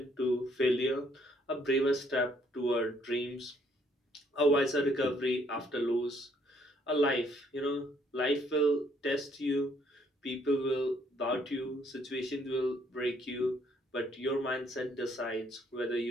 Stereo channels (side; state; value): both; normal; correlation 0.67